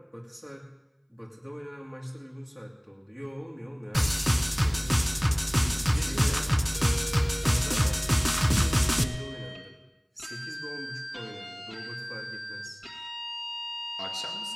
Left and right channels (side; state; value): both; identical; correlation 1.00